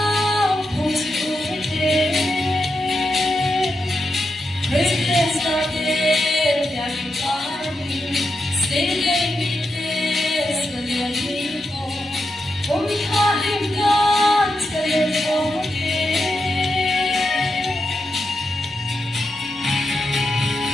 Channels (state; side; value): normal; both; correlation 0.86